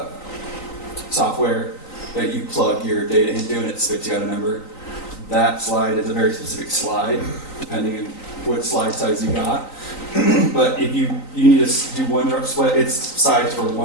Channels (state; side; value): late; right; 3.9 ms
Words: software that you plug your data into and it spits you out a number, that slide is a very specific slide, depending on what slide size you got. But if you need to do one drop split, it's sized for